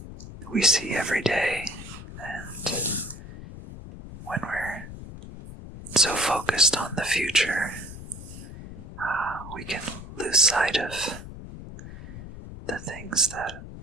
we see every day, and when we're so focused on the future, we can lose sight of the things that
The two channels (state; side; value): noise; left; rumble, 13 dB below the sound